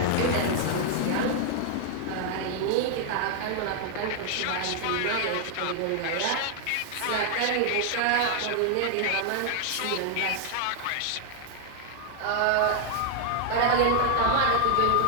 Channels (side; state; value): both; different; correlation 0.00